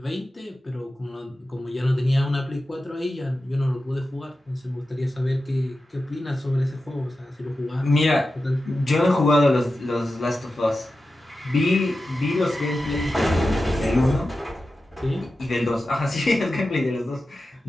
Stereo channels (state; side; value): normal; both; correlation 0.93